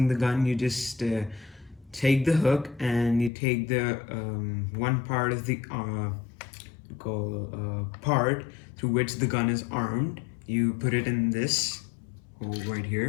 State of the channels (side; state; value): right; drops out; at 3.3 s